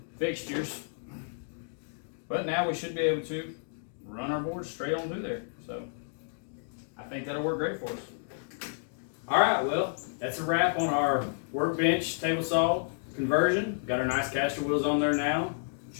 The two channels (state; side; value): silent; right; digital silence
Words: fixtures. But now we should be able to run our board straight on through there. So I think that'll work great for us. All right, well, that's a wrap on our Workbench table saw conversion. Got our nice caster wheels on there now.